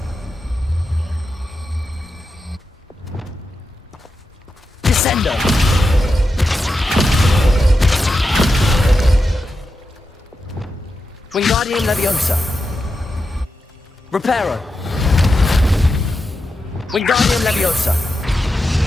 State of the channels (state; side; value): normal; both; correlation 0.88